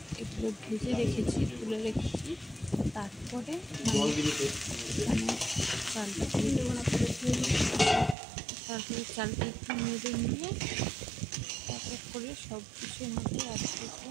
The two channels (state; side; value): drops out; left; at 8.2 s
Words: এগুলো ভেজে রেখেছি, তুলে রেখেছি। তারপরে মানে চালটা তারপরে চালটা একটু নেড়ে নিয়ে এক এক করে সব কিছুর মধ্যে অ্যাড করবো।